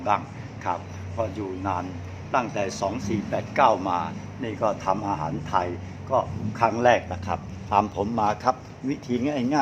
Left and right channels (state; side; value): identical; both; correlation 1.00